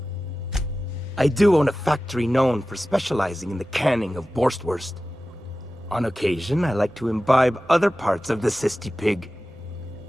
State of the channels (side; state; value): both; normal; correlation 0.95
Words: I do own a factory known for specializing in the canning of Borstwurst. On occasion, I like to imbibe other parts of the cysty pig.